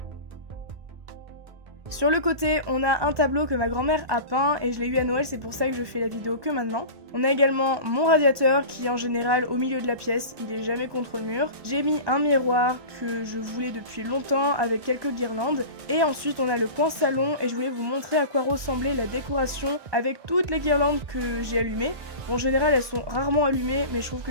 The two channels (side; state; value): left; late; 1.2 ms